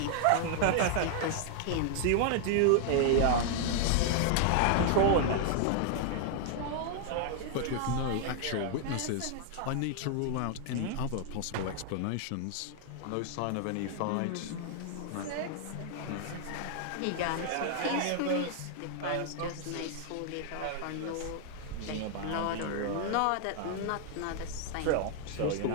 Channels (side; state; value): both; different; correlation 0.00